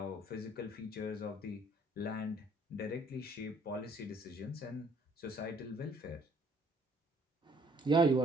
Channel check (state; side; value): normal; both; correlation 0.62